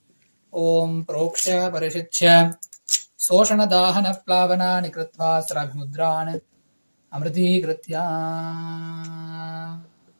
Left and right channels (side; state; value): both; inverted; correlation -1.00